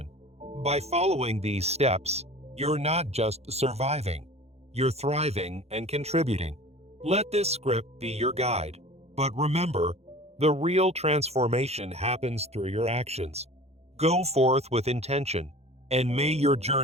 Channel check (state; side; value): late; left; 0.31 ms